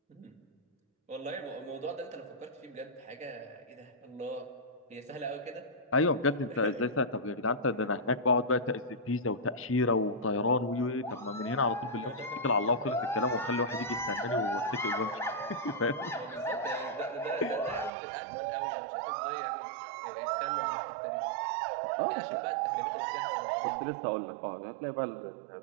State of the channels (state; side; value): drops out; left; at 17.9 s